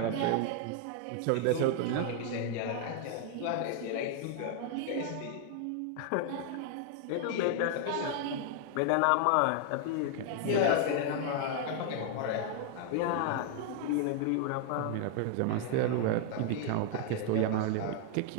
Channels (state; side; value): different; both; correlation 0.00